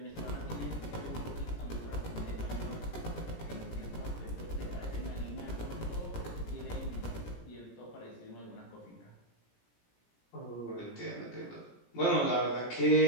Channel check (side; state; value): right; late; 17 ms